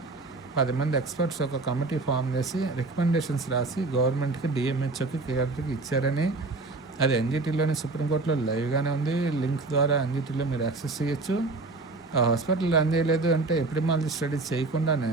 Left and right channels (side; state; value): left; quieter; 3.5 dB